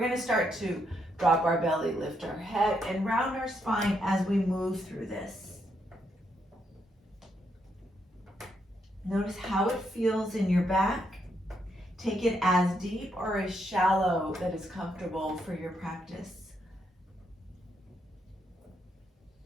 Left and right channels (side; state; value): both; normal; correlation 0.78